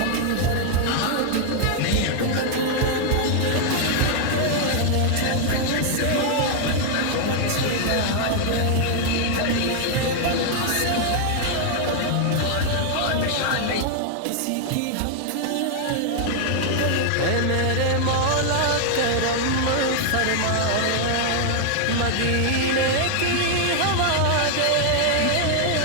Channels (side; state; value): both; different; correlation 0.00